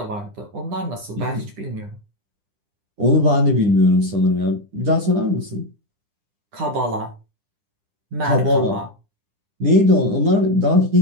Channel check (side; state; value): left; late; 9.9 ms